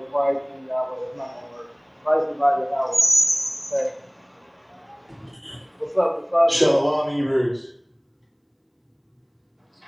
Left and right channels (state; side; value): identical; both; correlation 1.00